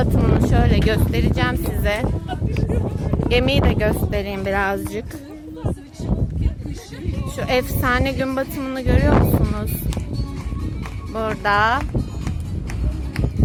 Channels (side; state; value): both; identical; correlation 1.00